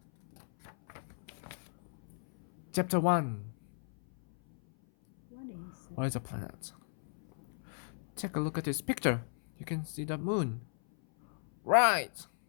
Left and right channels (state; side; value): silent; right; 54 dB below the other